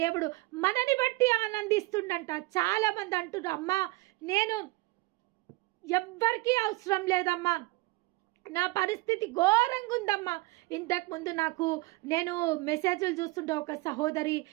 మనని బట్టి ఆనందిస్తుండంట. చాలా మంది అంటున్నారు, అమ్మా నేను ఎవ్వరికీ అవసరం లేదమ్మా, నా పరిస్థితి ఘోరంగా ఉందమ్మా. ఇంతకుముందు నేను మెసేజ్లు చూస్తుంటే ఒక సహోదరి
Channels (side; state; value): left; quieter; 22.2 dB